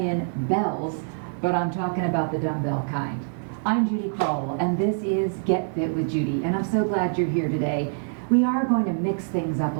bells, but I'm talking about the dumbbell kind. I'm Judy Crowell, and this is Get Fit with Judy, and I'm so glad you're here today. We are going to mix things up a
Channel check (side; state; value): left; silent; digital silence